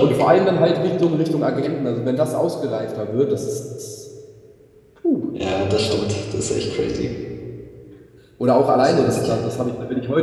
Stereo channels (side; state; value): both; identical; correlation 1.00